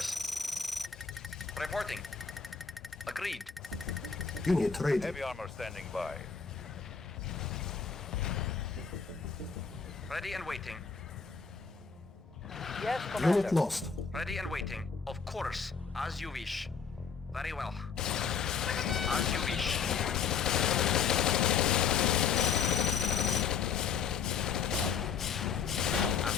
Reporting. Agreed. Unit ready. Heavy armor standing by. Ready and waiting. Yes, Commander. Unit lost. Ready and waiting. Of course. As you wish. Very well. As you wish. At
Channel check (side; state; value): right; quieter; 6.2 dB